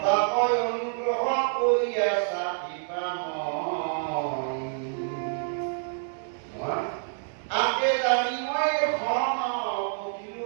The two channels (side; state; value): left; silent; 60 dB below the other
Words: তাকৈ অনুগ্ৰহ কৰি আছা আগে জানি মই খন